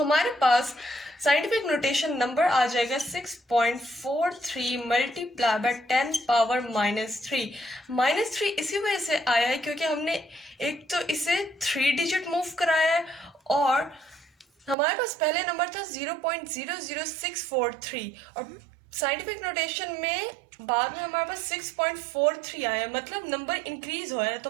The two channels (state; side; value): drops out; left; at 14.8 s